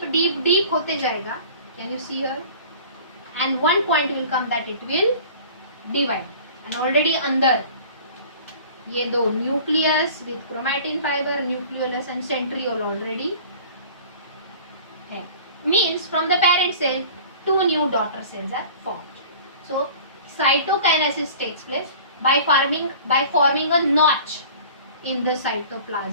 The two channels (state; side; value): inverted; both; correlation -0.44